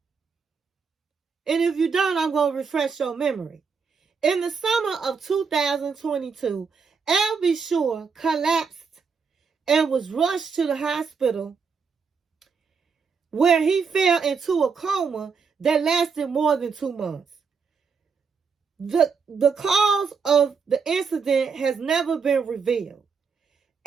And if you don't, I'm going to refresh your memory. In the summer of 2022, L.B. Shore collapsed and was rushed to the hospital where he fell into a coma that lasted more than 2 months. The cause of the incident has never been revealed.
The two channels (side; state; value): left; quieter; 5.6 dB